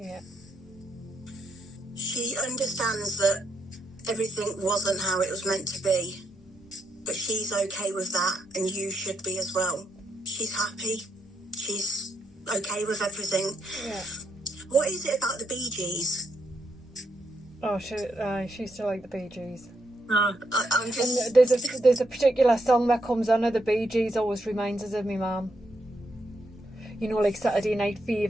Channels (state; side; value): normal; both; correlation 0.78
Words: She understands that everything wasn't how it was meant to be. But she's okay with that, and you should be as well. She's happy. She's okay with everything. Yeah. What is it about the Bee Gees? Oh, she used to like the Bee Gees. I'm just... And there's a particular song that comes on of the Bee Gees always reminds us of my mum. Like Saturday Night